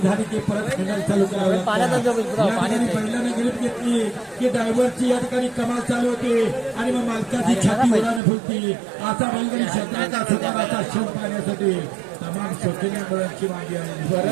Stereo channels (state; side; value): drops out; left; at 8.2 s